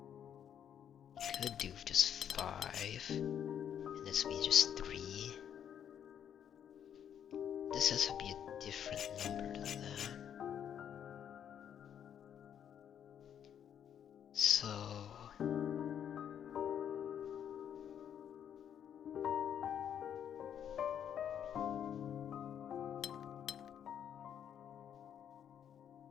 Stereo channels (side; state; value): right; quieter; 9.1 dB